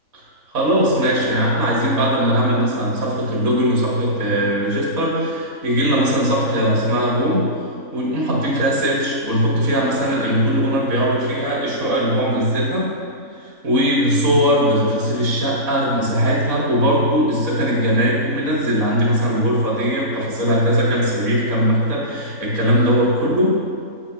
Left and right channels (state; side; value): late; left; 3.5 ms